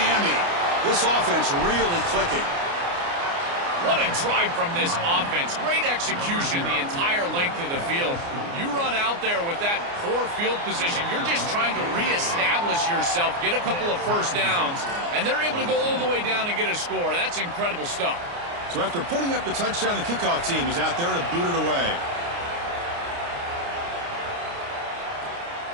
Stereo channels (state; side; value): late; left; 29 ms